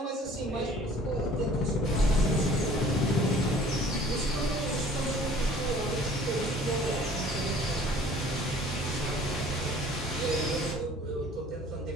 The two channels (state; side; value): normal; both; correlation 0.51